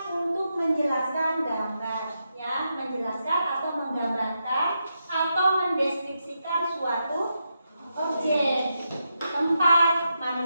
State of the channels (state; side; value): inverted; both; correlation -0.85